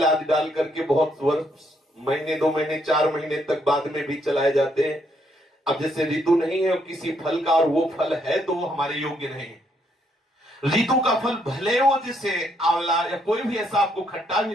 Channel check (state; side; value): normal; both; correlation 0.73